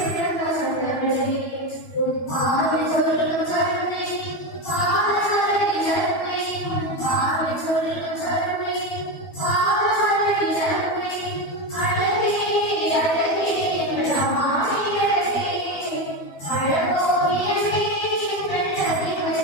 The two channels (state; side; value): late; right; 12 ms